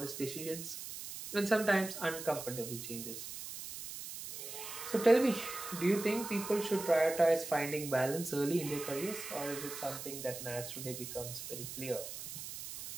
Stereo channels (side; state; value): right; noise; hiss, 9 dB below the sound